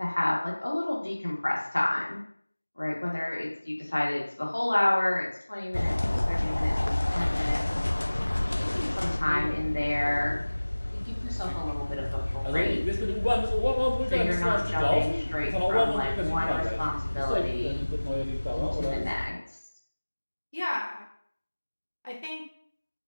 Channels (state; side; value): inverted; both; correlation -1.00